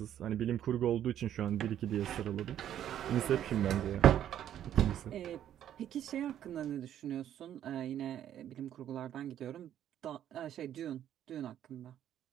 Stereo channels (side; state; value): left; quieter; 10.8 dB